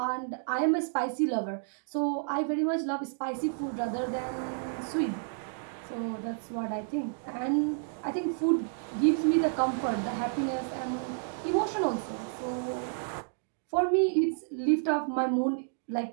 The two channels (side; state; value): left; silent; digital silence